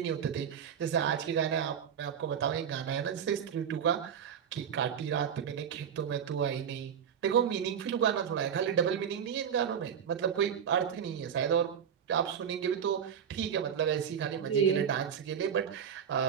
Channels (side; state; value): left; quieter; 8.1 dB